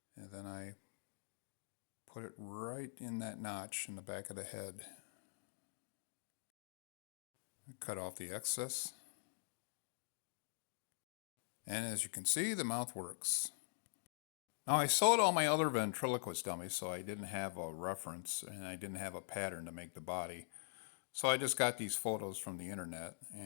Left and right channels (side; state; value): right; silent; digital silence